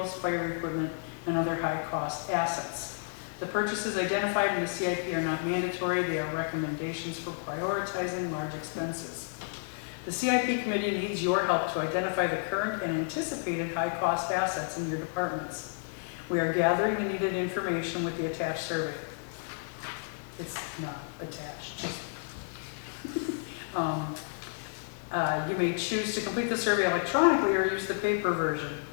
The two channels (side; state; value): right; silent; digital silence